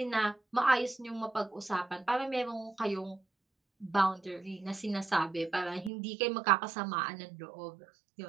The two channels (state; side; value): drops out; left; at 5.9 s